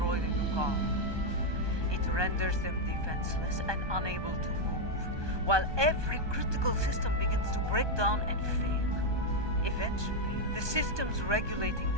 the Lukar. It renders them defenseless and unable to move, while every critical system begins to break down and fail. Eventually, the systems regulating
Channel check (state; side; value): late; left; 1.2 ms